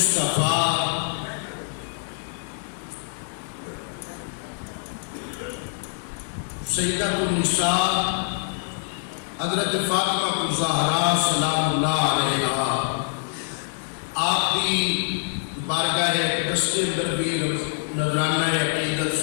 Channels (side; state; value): right; silent; digital silence